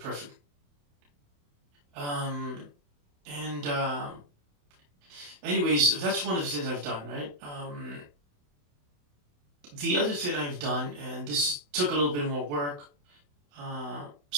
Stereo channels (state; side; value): late; left; 28 ms